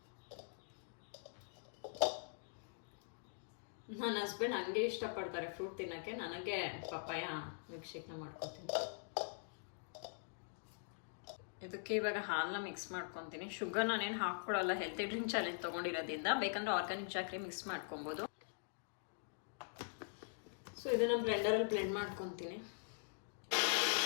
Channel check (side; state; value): right; silent; digital silence